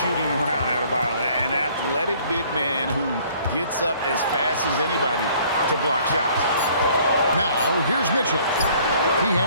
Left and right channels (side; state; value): both; inverted; correlation -0.57